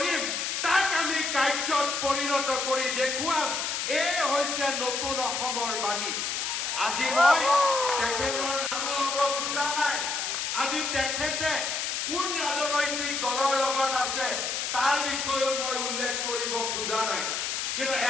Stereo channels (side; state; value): left; noise; hiss, 1 dB below the sound